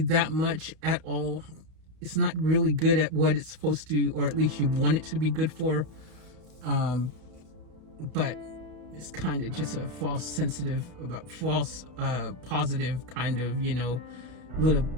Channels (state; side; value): late; left; 32 ms